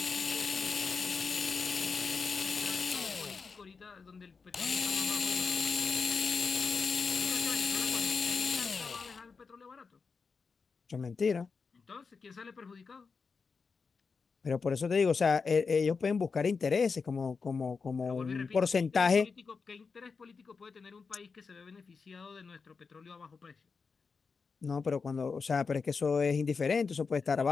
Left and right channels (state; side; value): quieter; right; 5.0 dB